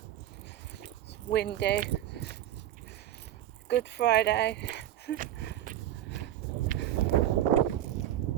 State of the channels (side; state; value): left; quieter; 12.5 dB